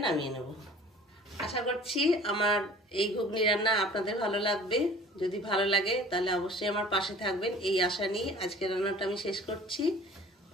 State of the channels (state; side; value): normal; both; correlation 0.47